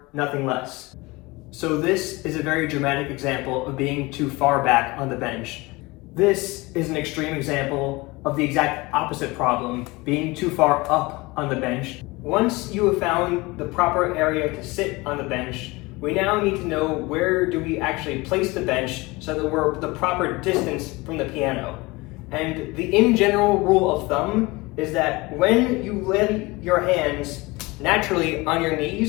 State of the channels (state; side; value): quieter; right; 23.1 dB